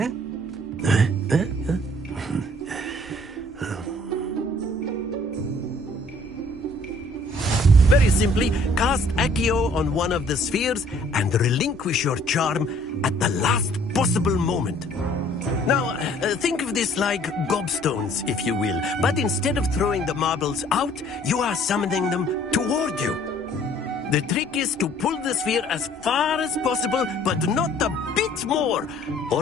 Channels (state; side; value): normal; both; correlation 0.58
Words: Very simply, cast Accio on one of the spheres and relinquish your charm at the last possible moment. Now, think of this like gobstones, if you will, but instead of throwing the marbles out, you are summoning them toward you. The trick is to pull the sphere as far as possible, but not a bit more,